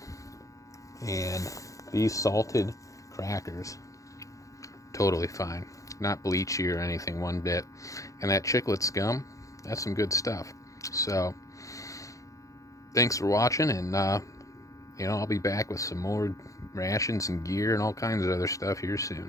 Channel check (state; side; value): late; right; 0.16 ms